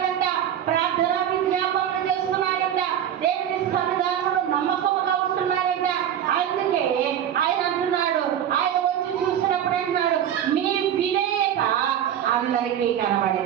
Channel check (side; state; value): left; quieter; 10.1 dB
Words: ప్రార్థన విజ్ఞాపనలు చేస్తున్నారంట. దేవుని సన్నిధానంలో నమ్మకంగా ఉంటున్నారంట. అందుకే ఆయన అంటున్నాడు, ఆయన వచ్చి చూసినప్పుడు అంటున్నాడు, మీ విధేయత అందరికీ